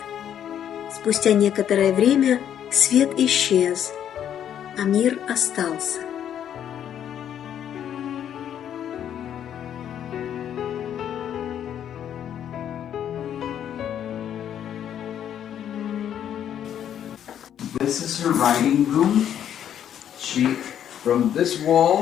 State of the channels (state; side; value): quieter; right; 9.8 dB